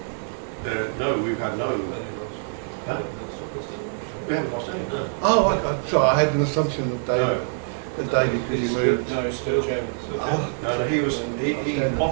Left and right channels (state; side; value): silent; left; 62 dB below the other